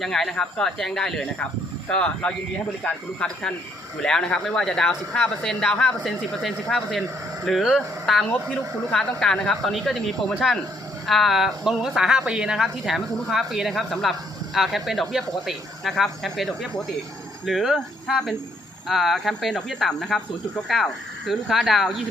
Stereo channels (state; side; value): normal; both; correlation 0.68